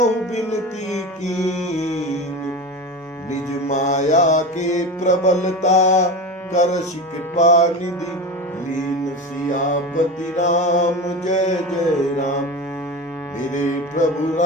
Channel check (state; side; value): normal; both; correlation 0.26